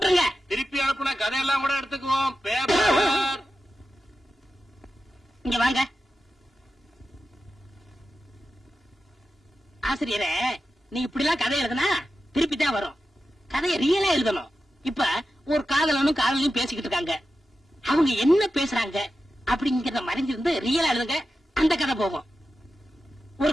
திருப்பி அனுப்புன கதையெல்லாம் கூட எடுத்துக்குவோம். பேப்பர் இங்க வாங்க. ஆசிரியரே, நீ இப்படி எல்லாம் கதை எழுதுனா திருப்பி தான் வரும். கதையை ரியலா எழுதணும். இப்ப ஒரு காதலனும் காதலையும் பேசிக்கிட்டு இருக்காங்க. அவங்க என்ன பேசுறாங்க அப்படிங்கறத மறைஞ்சிருந்து ரியலா எழுதுங்க. அந்த கதை போகும். ஒரு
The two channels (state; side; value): normal; both; correlation 0.91